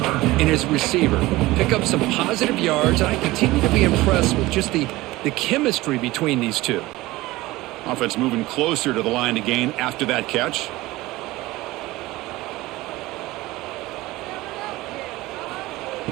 and his receiver. Pick up some positive yards, and I continue to be impressed with just the chemistry between these two. Offense moving closer to the line to gain after that catch.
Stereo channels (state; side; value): quieter; left; 19.0 dB